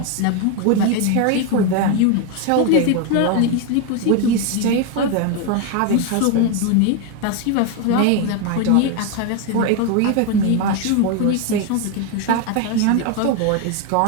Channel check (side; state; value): both; different; correlation 0.02